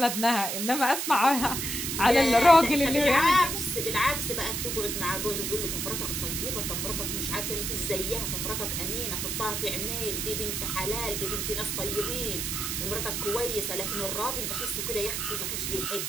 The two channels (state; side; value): noise; right; hiss, 2 dB below the sound